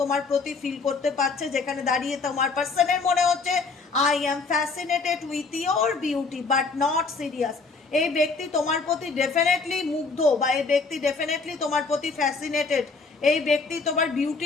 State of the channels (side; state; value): right; quieter; 4.2 dB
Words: তোমার প্রতি ফিল করতে পারছে, যেখানে দাঁড়িয়ে তোমার পার্সনের মনে হচ্ছে I am fascinated with your beauty but not serious. এই ব্যক্তি তোমার প্রতি ডেফিনেটলি মুগ্ধ, বা এই ব্যক্তি ডেফিনেটলি তোমার প্রতি ফ্যাসিনেটেড, এই ব্যক্তি তোমার